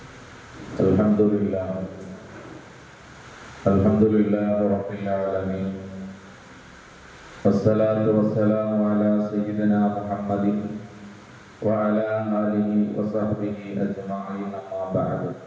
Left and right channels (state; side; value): identical; both; correlation 1.00